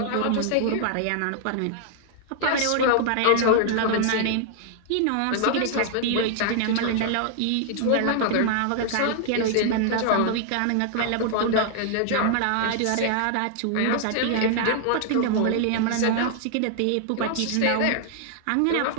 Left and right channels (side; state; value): both; different; correlation 0.00